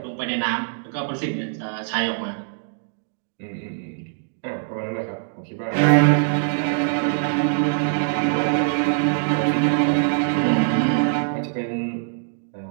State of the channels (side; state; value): left; silent; digital silence